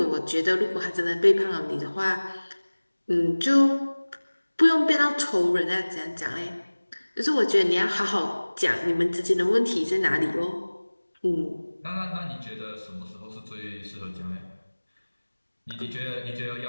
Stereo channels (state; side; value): inverted; both; correlation -1.00